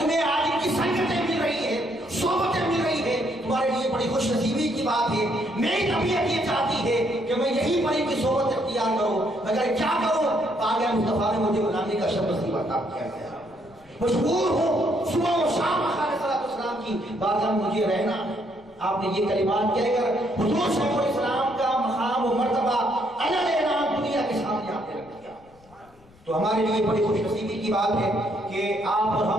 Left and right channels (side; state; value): left; noise; rumble, 27 dB below the sound